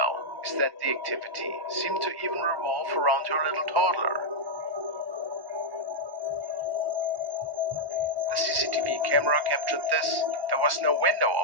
is that the activity seemed to even revolve around her little toddler. The CCTV camera captured this. There was no window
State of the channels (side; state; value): left; late; 1.1 ms